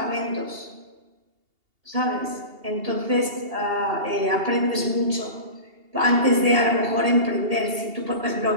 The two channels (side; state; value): left; late; 2.8 ms